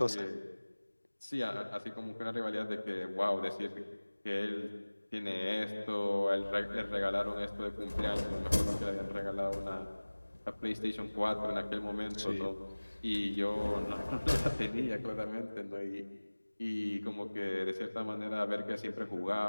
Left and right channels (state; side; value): inverted; both; correlation -1.00